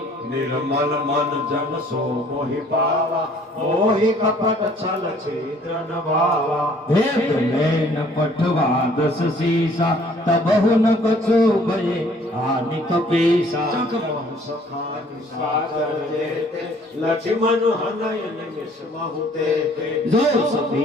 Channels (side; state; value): both; normal; correlation 0.58